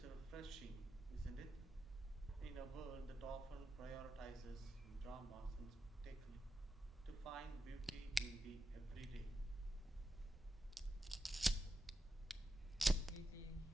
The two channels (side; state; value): both; normal; correlation 0.88